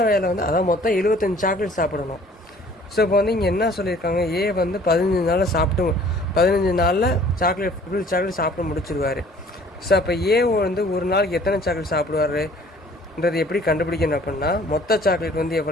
வேலை வந்து அதான் மொத்தம் 75 சாக்லேட் சாப்பிடணும். ஸோ இப்போ வந்து இங்கே என்ன சொல்லியிருக்காங்க, ஏ வந்து 15 நாளில் 15 நாளில் ஃபுல் சாக்லேட் சாப்பிட்டு முடிச்சிருவார். ஸோ அப்போ ஏ வந்து ஒரு நாளைக்கு எத்தனை சாக்லேட் சாப்பிடுவாருன்றது எப்படி கண்டுபிடிக்கணும் அப்படின்னா, மொத்த சாக்லேட் வந்து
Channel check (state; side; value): normal; both; correlation 0.53